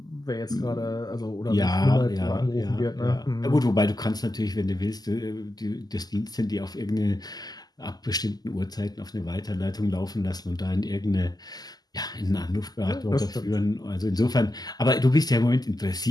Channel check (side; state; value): right; late; 0.19 ms